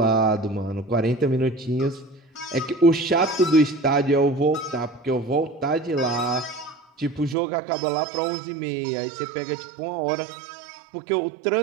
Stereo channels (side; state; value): left; drops out; at 7.4 s